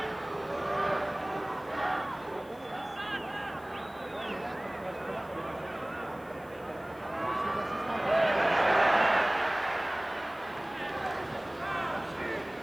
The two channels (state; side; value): noise; left; hiss, 27 dB below the sound